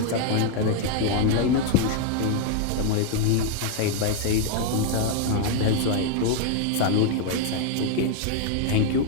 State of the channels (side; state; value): both; different; correlation 0.00